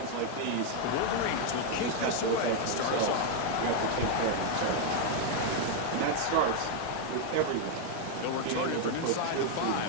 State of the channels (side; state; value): both; different; correlation 0.00